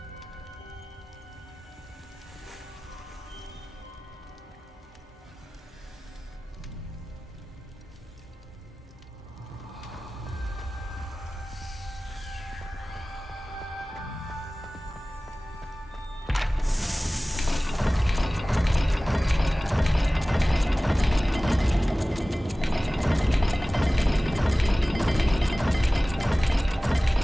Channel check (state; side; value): normal; both; correlation 0.98